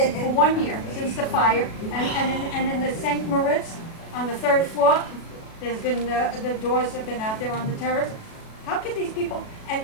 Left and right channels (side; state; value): right; late; 37 ms